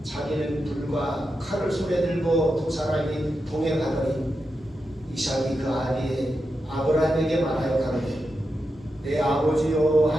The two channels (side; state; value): both; normal; correlation 0.88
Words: 자기는 불과 칼을 손에 들고 두 사람이 동행하더니 이삭이 그 아비에 아브라함에게 말하여 가로되 내 아버지요